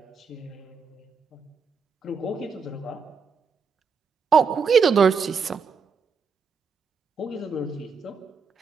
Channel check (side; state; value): left; quieter; 5.3 dB